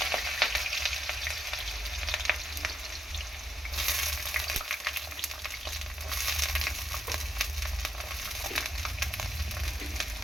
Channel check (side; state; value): both; normal; correlation 0.81